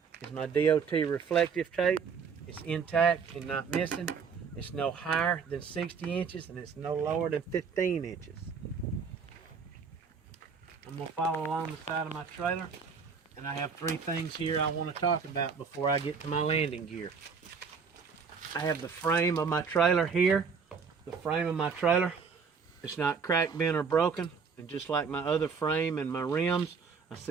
is my DOT reflective tape. It's intact and not missing. It's no higher than 60 inches and it's no lower than 15 inches. I'm going to follow along the side of my trailer, and I have 3 things here I want to talk about before I get to my landing gear. I have the frame of my trailer here. The frame of my trailer, it's not cracked, bent, or broken, and just like my other frame and my rims, I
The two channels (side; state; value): left; quieter; 5.7 dB